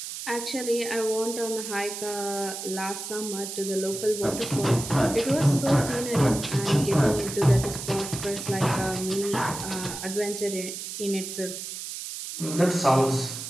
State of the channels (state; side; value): noise; right; hiss, 8 dB below the sound